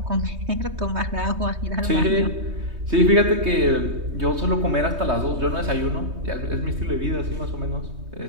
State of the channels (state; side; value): late; left; 3.2 ms